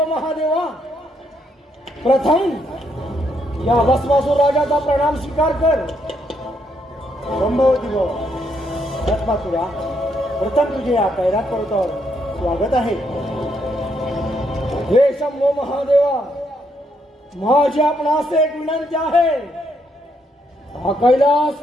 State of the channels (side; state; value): both; normal; correlation 0.75